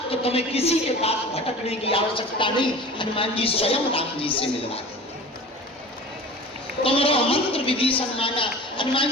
तो तुम्हें किसी के पास भटकने की आवश्यकता नहीं। हनुमान जी स्वयं राम जी से मिलवा देंगे। तुमरो मंत्र विभीषण माना।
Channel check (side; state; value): both; normal; correlation 0.38